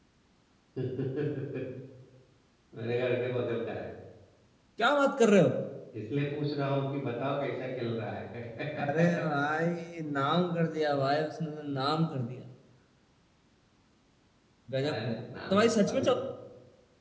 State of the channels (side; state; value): both; identical; correlation 1.00